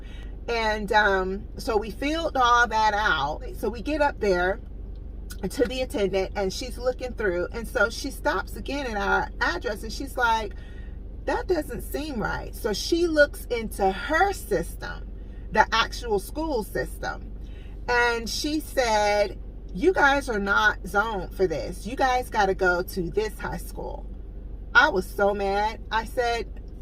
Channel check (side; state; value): both; identical; correlation 1.00